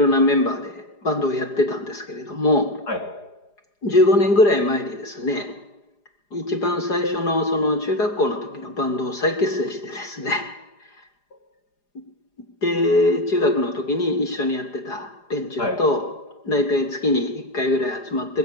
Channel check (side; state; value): right; late; 4.9 ms